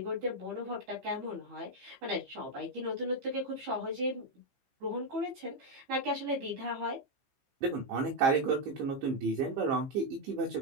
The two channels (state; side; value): late; left; 15 ms